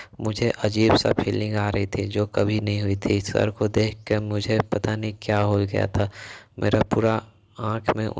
मुझे अजीब सा फीलिंग आ रही थी जो कभी नहीं हुई थी। सर को देख कर मुझे पता नहीं क्या हो गया था। मेरा पूरा आँख में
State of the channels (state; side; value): identical; both; correlation 1.00